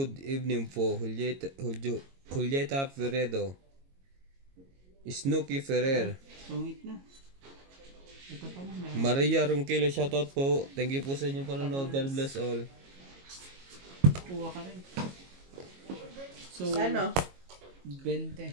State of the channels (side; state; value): left; late; 22 ms